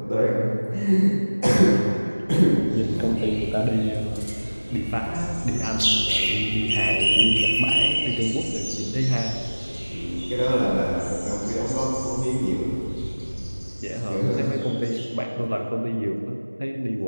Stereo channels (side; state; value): both; inverted; correlation -1.00